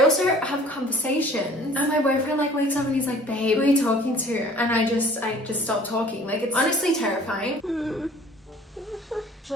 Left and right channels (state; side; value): normal; both; correlation 0.50